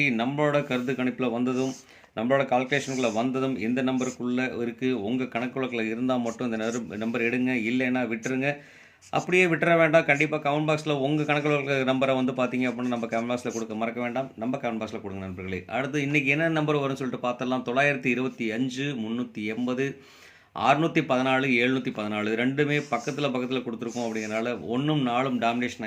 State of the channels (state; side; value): identical; both; correlation 1.00